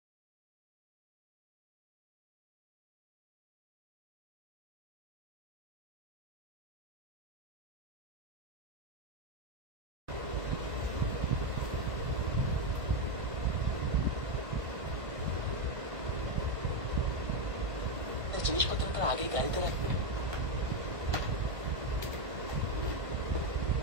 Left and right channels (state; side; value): late; left; 1.5 ms